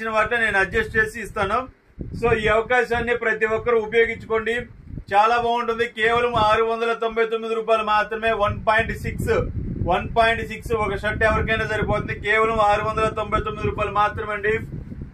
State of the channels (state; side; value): identical; both; correlation 1.00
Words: వాటిని నేను అడ్జస్ట్ చేసి ఇస్తాను. సో ఈ అవకాశాన్ని ప్రతి ఒక్కరు ఉపయోగించుకోండి. చాలా బాగుంటుంది. కేవలం 699 రూపాయలు మాత్రమే. 1.6 ఒక షర్ట్ ఎవరికైనా సరిపోతుంది. కేవలం 699 రూపాయలు మాత్రమే అండి.